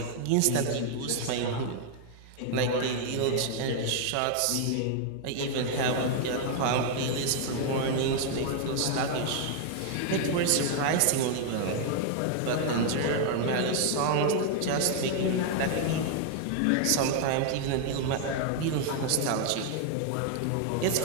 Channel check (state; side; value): different; both; correlation 0.00